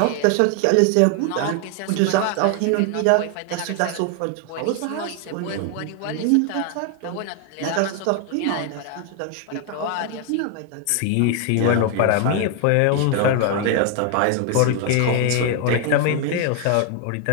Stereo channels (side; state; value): both; different; correlation 0.01